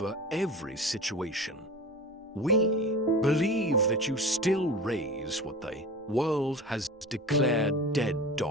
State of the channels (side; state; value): both; normal; correlation 0.34